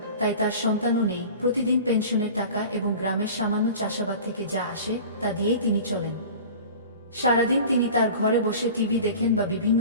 তাই তার সন্তানও নেই। প্রতিদিন পেনশনের টাকা এবং গ্রামের সামান্য চাষাবাদ থেকে যা আসে তা দিয়েই তিনি চলেন। সারাদিন তিনি তার ঘরে বসে টিভি দেখেন বা বিভিন্ন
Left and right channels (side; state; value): both; inverted; correlation -0.39